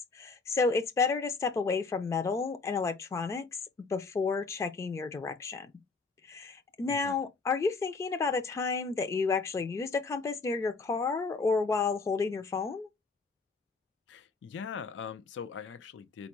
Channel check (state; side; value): quieter; right; 4.2 dB